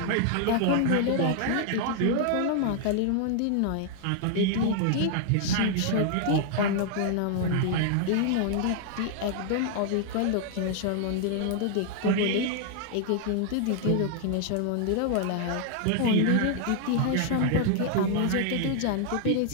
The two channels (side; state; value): both; different; correlation 0.00